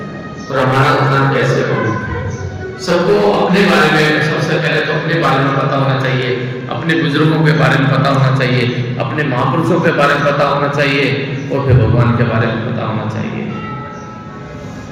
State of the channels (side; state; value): both; identical; correlation 1.00